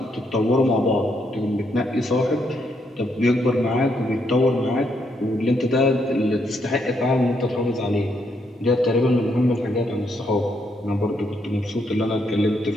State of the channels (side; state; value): both; normal; correlation 0.76